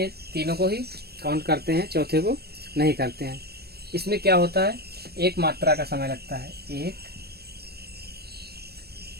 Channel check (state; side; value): late; left; 0.47 ms